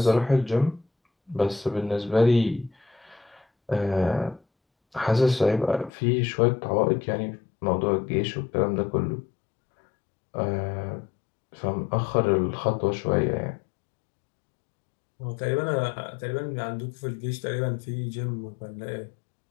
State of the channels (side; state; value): right; drops out; at 5.9 s